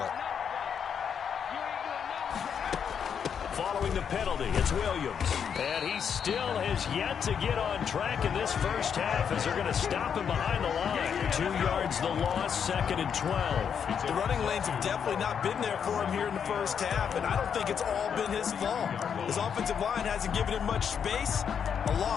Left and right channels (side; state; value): right; quieter; 7.5 dB